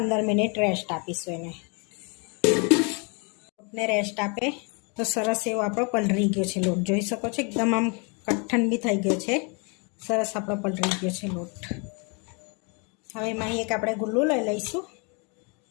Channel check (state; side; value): quieter; right; 33.4 dB